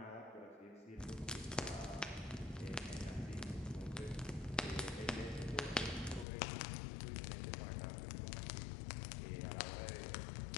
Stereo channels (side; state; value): right; drops out; at 6.2 s